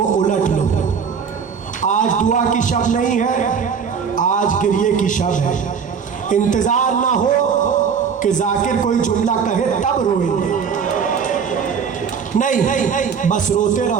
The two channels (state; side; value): quieter; left; 6.6 dB